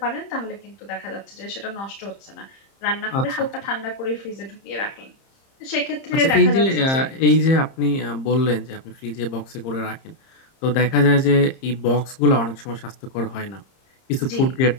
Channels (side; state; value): right; late; 30 ms